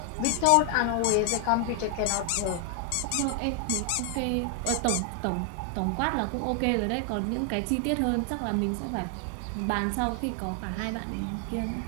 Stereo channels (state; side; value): different; both; correlation 0.00